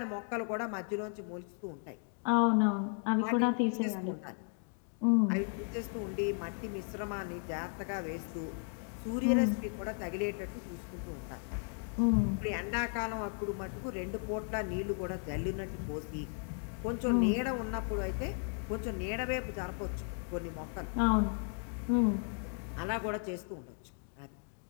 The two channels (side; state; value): right; silent; 54 dB below the other